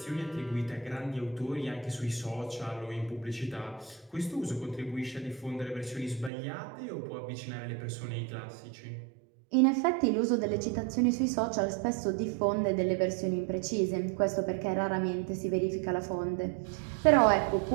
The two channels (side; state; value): left; drops out; at 6.3 s